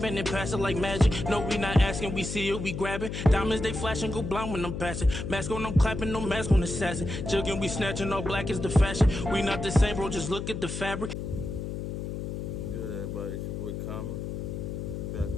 and passing like magic. No, we not asking, we see it, we grabbing. Diamonds, they flashing, go blind when I'm passing. Mask on, I'm clapping, no mask on assassin. Jugging, we snatching, all black is the fashion. We not the same, bro, just look at the fabric. Good, everybody, it's your boy Common. Back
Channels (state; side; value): noise; left; hum, 5 dB below the sound